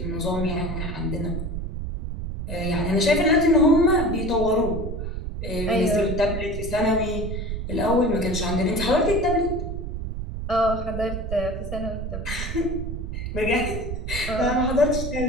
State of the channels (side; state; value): right; noise; rumble, 5 dB below the sound